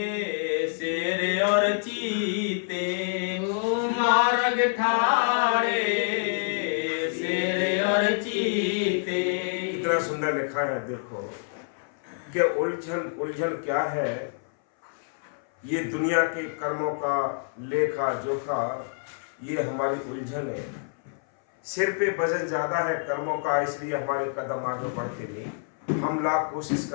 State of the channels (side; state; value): right; silent; 58 dB below the other